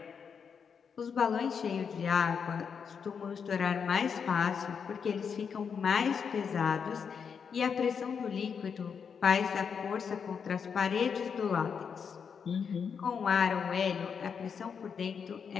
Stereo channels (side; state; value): right; quieter; 6.6 dB